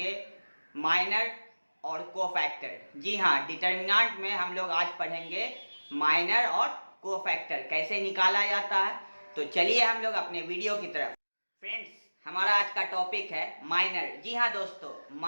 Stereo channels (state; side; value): inverted; both; correlation -1.00